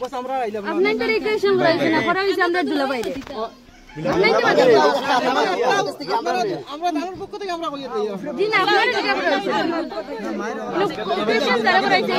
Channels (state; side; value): identical; both; correlation 1.00